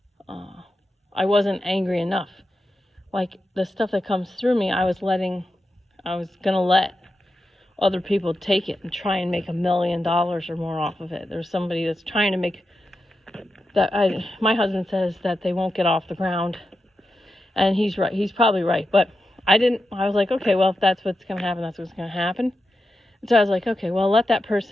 I wasn't angry enough. Like the stuff that comes through me, I was gonna let other people take it and try and make $1 million or more off of it. There's somebody that's trying to make that. My husband says that they won't get off the ground, and he's right. He's probably right, but I was like, okay, well, if that's what's gonna happen, that's what's gonna happen. And so I was like, okay, well, let that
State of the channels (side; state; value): both; normal; correlation 0.89